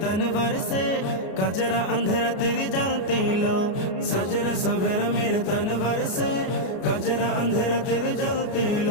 तनवर से, कजरा अंधेरा तेरी जलती लो। सजरा सवेरा मेरे तनवर से, कजरा अंधेरा तेरी जलती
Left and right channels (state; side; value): late; right; 33 ms